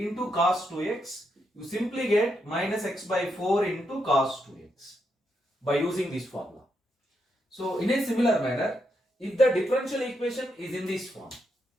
cos 2x. You simply get minus x by 4 into cos 2x by using this formula. So in a similar manner, if the differential equation is in this form,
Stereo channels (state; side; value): normal; both; correlation 0.81